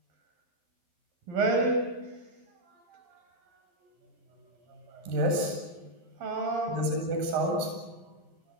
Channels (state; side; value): late; left; 11 ms